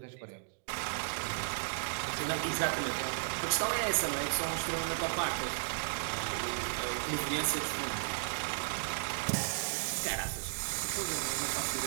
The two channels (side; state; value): left; silent; digital silence